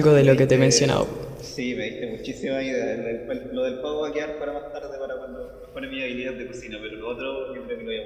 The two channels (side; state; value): both; identical; correlation 1.00